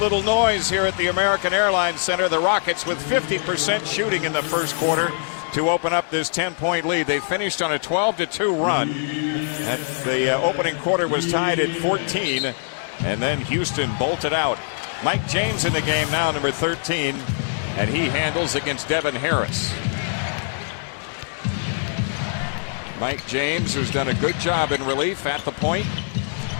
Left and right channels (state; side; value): silent; right; digital silence